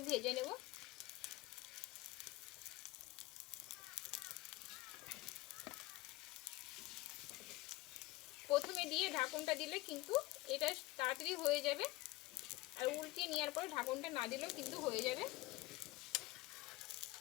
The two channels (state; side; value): quieter; right; 19.5 dB